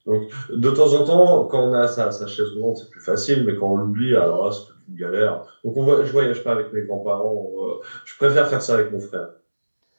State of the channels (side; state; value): both; inverted; correlation -1.00